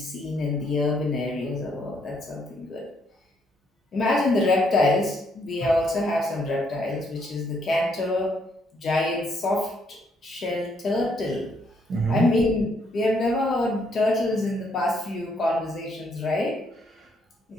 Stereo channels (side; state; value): both; normal; correlation 0.72